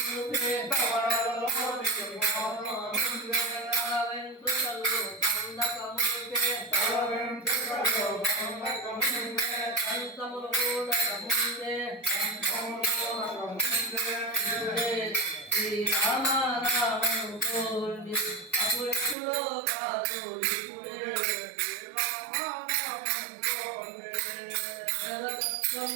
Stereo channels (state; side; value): drops out; left; at 19.2 s